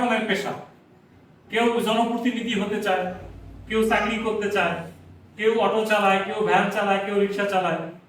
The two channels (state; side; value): identical; both; correlation 1.00